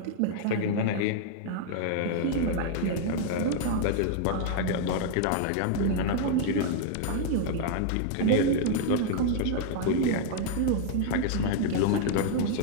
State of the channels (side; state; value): both; different; correlation 0.00